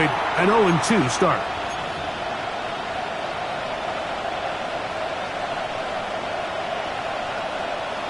an 0-2 start.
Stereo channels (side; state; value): both; identical; correlation 1.00